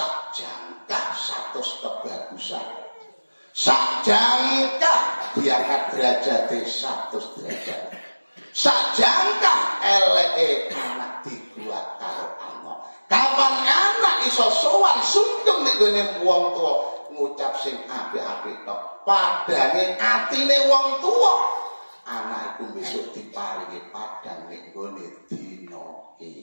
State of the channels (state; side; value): inverted; both; correlation -1.00